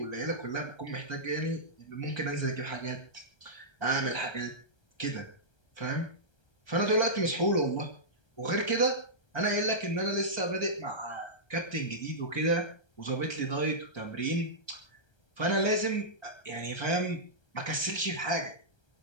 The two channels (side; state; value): right; late; 1.3 ms